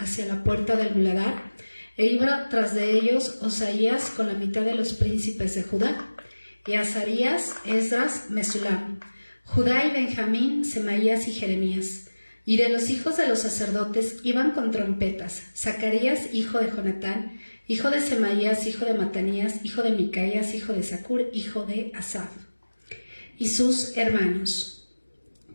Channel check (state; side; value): inverted; both; correlation -1.00